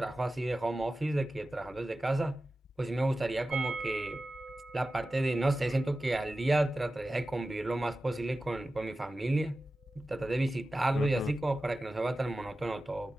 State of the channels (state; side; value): normal; both; correlation 0.94